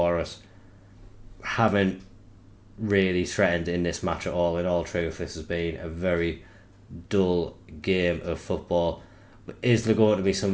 us. Haven't really threatened in this match at all. In all truth, this has been a very dull game of football. Is there going to be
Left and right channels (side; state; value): both; identical; correlation 1.00